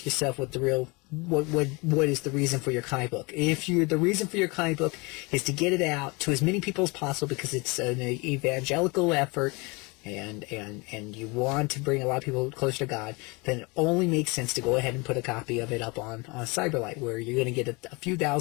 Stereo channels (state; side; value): quieter; right; 27.3 dB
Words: yourself what is the reason for your comic book. If the reason for your comic book is to get it out to as many people as possible because it's an evangelical effort and you want to bring a lot of people closer to God, then it only makes sense to go ahead and put a copy of it up on Cyberlight, where you're going to get a few